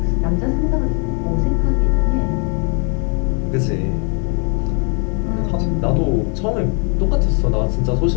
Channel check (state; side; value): quieter; right; 37.2 dB